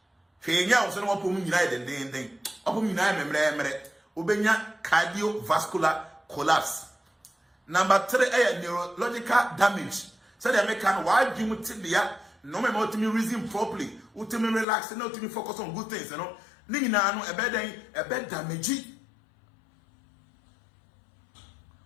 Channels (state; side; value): drops out; right; at 14.7 s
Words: Fenya was no one united and thing. Upon United, Ubenya cardiovascular collapse. Number 3, a neurological damage. So they make an wide no me ultimately reason properly, ultimately relax, and ultimately focus on good things, you know. Nina no a bed damage.